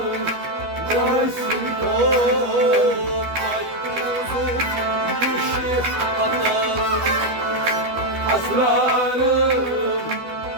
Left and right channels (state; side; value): late; left; 12 ms